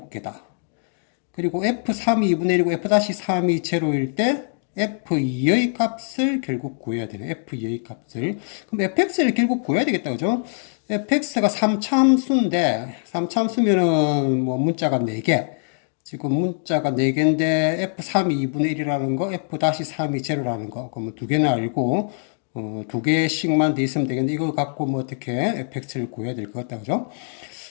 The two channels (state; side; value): silent; right; digital silence